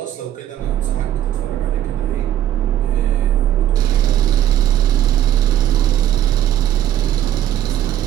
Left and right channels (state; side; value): quieter; left; 11.7 dB